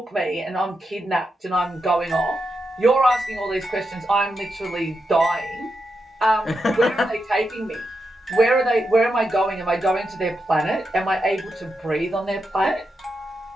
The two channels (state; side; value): normal; both; correlation 0.86